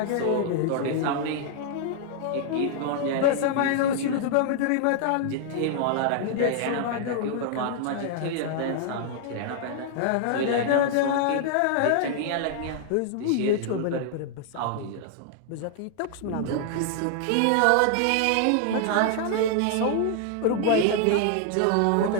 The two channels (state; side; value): different; both; correlation 0.00